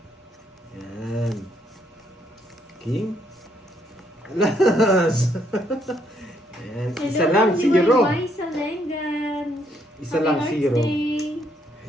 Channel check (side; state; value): both; normal; correlation 0.72